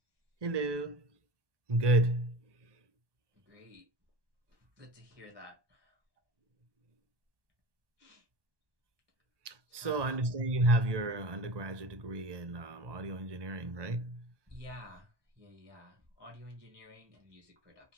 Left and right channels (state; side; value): late; left; 1.2 ms